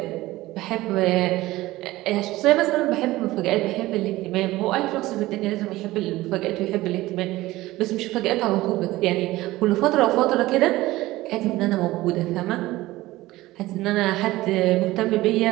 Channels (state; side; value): quieter; left; 17.8 dB